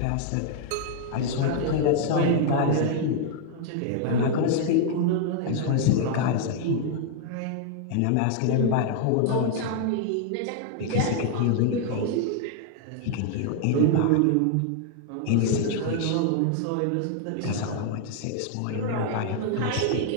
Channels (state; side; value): different; both; correlation 0.00